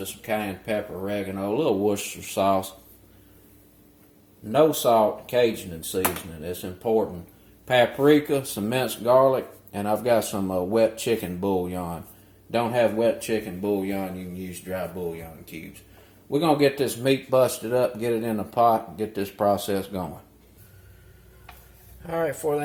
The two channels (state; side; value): identical; both; correlation 1.00